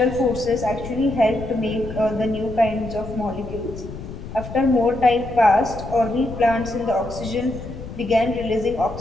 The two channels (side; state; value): left; noise; rumble, 11 dB below the sound